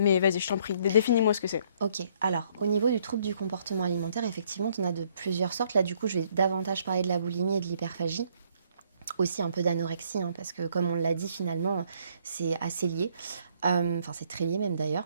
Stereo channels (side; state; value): both; inverted; correlation -0.65